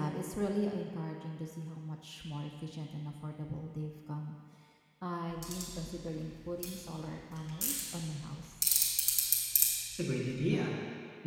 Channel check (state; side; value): identical; both; correlation 1.00